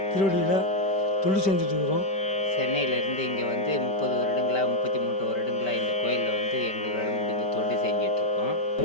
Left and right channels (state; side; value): late; right; 5.1 ms